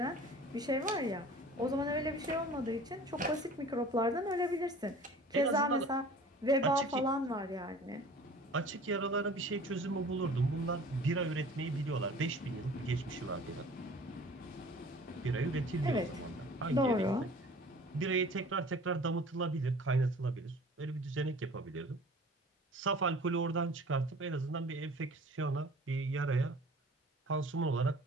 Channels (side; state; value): both; normal; correlation 0.45